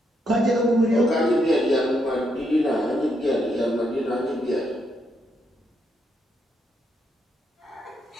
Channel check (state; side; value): normal; both; correlation 0.78